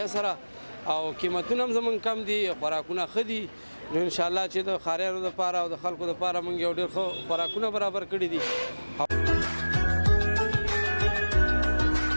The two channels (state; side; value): inverted; both; correlation -1.00